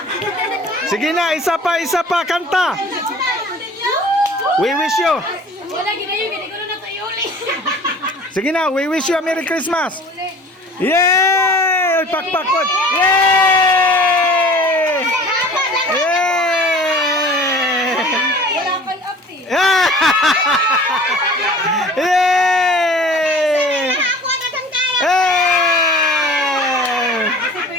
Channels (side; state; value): both; normal; correlation 0.45